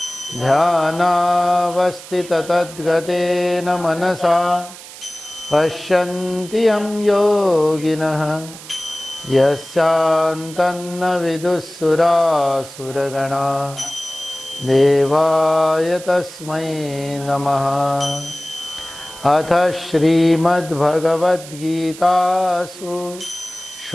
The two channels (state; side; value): noise; right; hiss, 16 dB below the sound